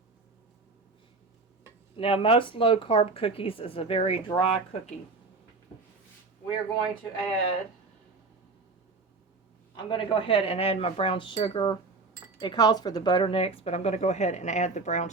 Now, most low-carb cookies is a very dry cookie. We're going to I'm going to go ahead and add my brown sugar. It calls for the butter next, but I'm going to go ahead and add the brown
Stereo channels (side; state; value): left; quieter; 3.8 dB